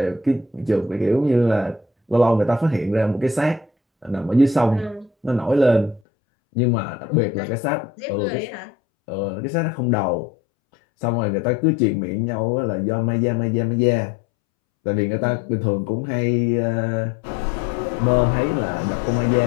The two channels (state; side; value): drops out; right; at 6.0 s